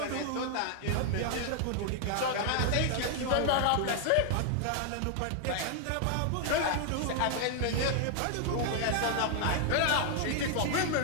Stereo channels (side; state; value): both; different; correlation 0.00